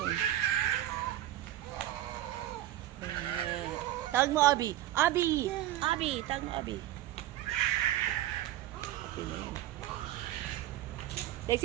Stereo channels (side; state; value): left; quieter; 14.0 dB